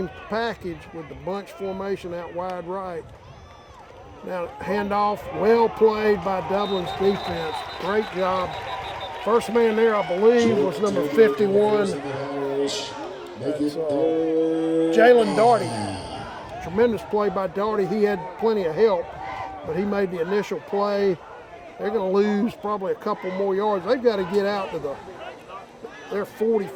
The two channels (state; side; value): identical; both; correlation 1.00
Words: package with the bunch formation out wide right. Now, handoff, well played by Dublin's defense. Great job. First man there, I believe, was number 51. That's Jalen Daugherty. Tremendous play by Daugherty. He had plenty of help, but he made the initial play. They're going to lose probably a couple more yards. They've got to get out to they're